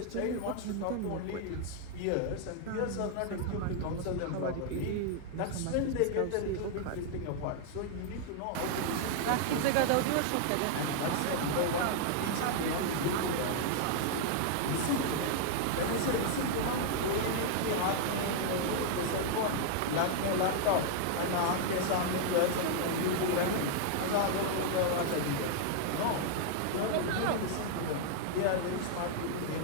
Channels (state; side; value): different; both; correlation 0.00